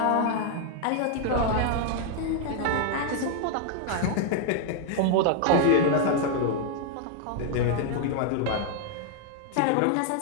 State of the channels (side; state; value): both; different; correlation 0.00